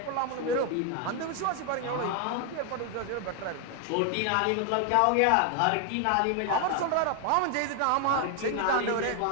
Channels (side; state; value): both; different; correlation 0.00